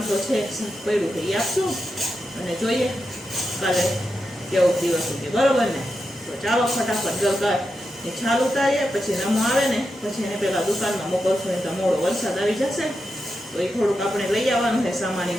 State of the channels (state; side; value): normal; both; correlation 0.88